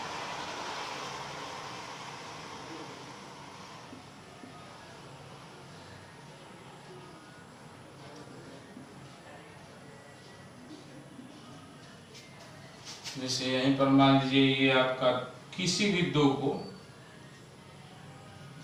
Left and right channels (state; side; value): identical; both; correlation 1.00